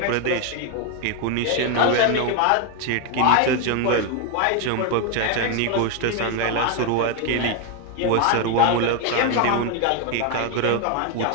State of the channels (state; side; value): different; both; correlation 0.01